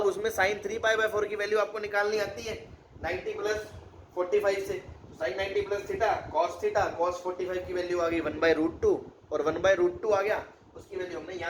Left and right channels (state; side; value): identical; both; correlation 1.00